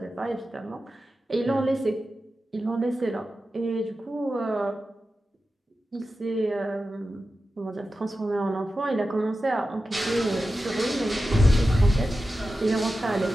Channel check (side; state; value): both; normal; correlation 0.92